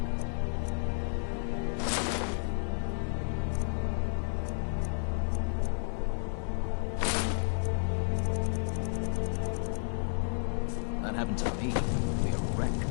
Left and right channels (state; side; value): silent; right; 57 dB below the other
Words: That happened to me. It'd be a wreck.